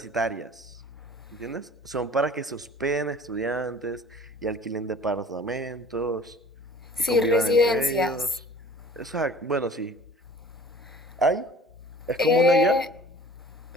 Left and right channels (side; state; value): both; normal; correlation 0.47